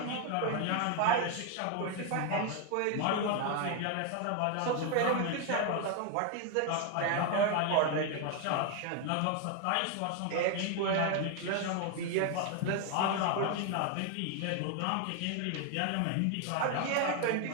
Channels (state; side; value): different; both; correlation 0.01